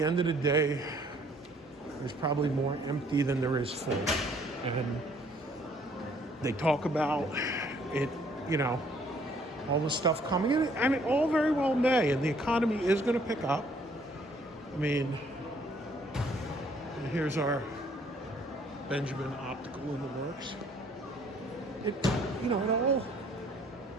end of the day, there's probably more empty than there is full. And they talk about it, all the stuff coming in, and it all very well may, and the economy is going to pick up. I mean, here's our Benjamin Optical in the works. It all,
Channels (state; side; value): normal; both; correlation 0.62